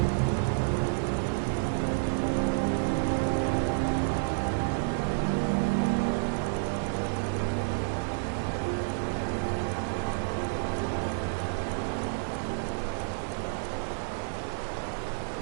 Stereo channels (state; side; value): silent; left; digital silence